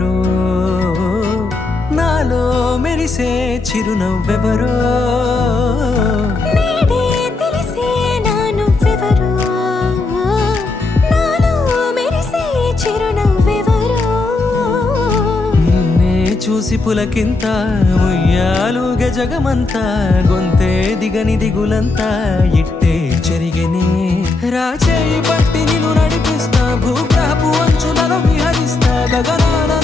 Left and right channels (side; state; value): right; quieter; 3.5 dB